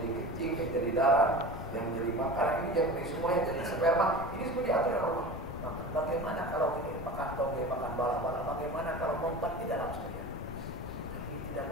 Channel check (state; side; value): noise; left; rumble, 11 dB below the sound